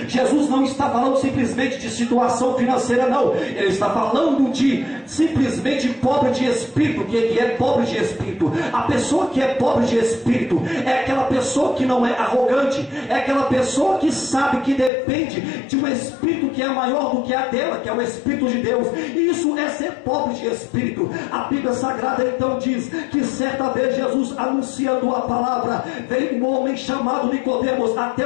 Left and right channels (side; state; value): right; drops out; at 14.9 s